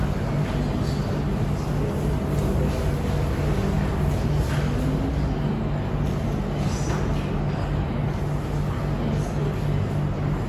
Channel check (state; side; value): identical; both; correlation 1.00